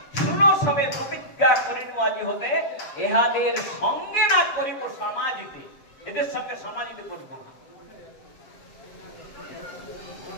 শুনো সবে প্রতিজ্ঞা করিন আজি হতে, ইহাদের সঙ্গে না করিব সমাজিতে। এদের সঙ্গে সমাজিতে করিব না।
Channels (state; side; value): late; right; 7.1 ms